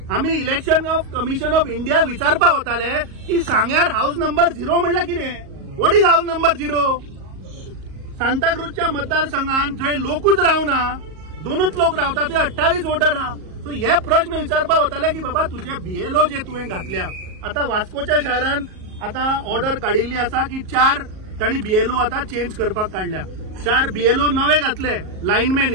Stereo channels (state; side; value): late; left; 38 ms